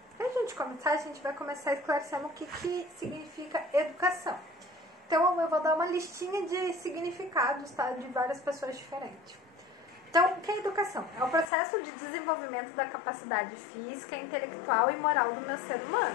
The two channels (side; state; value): right; drops out; at 11.5 s